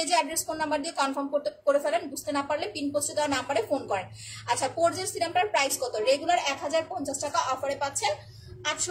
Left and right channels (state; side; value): identical; both; correlation 1.00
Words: অ্যাড্রেস ফোন নাম্বার দিয়ে কনফার্ম করে ফেলেন, বুঝতে না পারলে পিন পোস্টে দেওয়া না পারে ফোন করেন। আচ্ছা পোরজের সিরামটার প্রাইস কত? রেগুলার 1050 টাকা, অফারে পাচ্ছেন